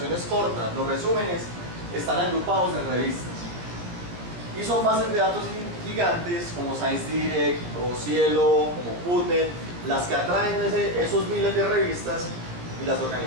cortas, los resúmenes, están agrupados en revistas. Y son bases de datos gigantes como ScienceDirect o Cielo, como PubMed, las que atraen esos miles de revistas y las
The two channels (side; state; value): left; late; 17 ms